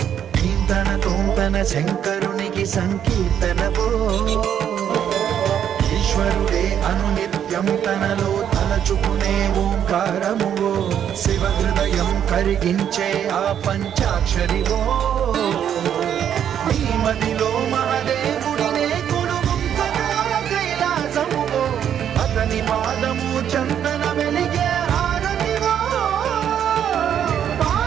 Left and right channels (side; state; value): left; quieter; 9.3 dB